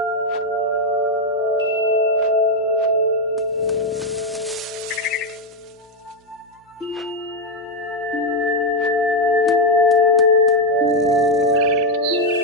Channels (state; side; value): normal; both; correlation 0.04